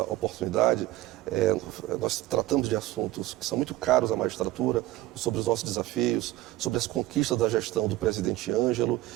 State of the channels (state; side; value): quieter; left; 16.6 dB